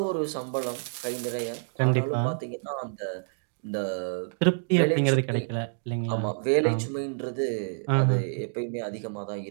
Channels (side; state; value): left; silent; digital silence